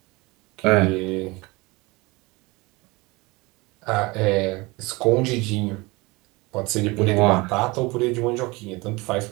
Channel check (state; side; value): quieter; left; 23.9 dB